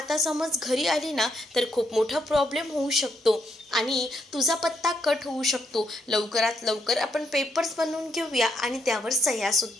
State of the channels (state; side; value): normal; both; correlation 0.76